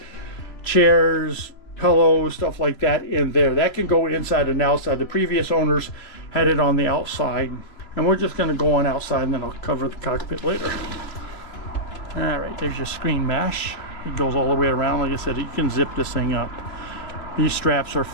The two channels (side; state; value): right; late; 3.0 ms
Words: chairs, pillows, stuff like that in there. That can go inside and outside. The previous owners had it on the outside. And we're just going to go on outside, and then I'll cover the cockpit later. All right, there's your screen mesh. It goes all the way around. Like I said, you can zip this thing up. These straps are